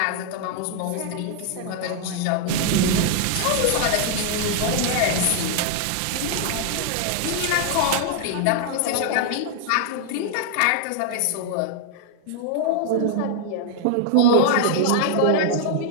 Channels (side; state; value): both; different; correlation 0.00